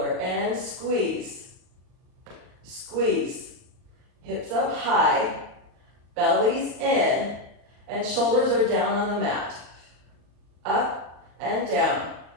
and squeeze. Squeeze. Hips up high. Belly's in. And shoulders are down on the mat. Up and down.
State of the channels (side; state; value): left; late; 39 ms